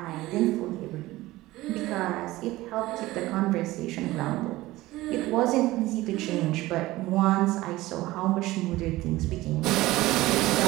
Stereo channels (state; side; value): quieter; left; 18.0 dB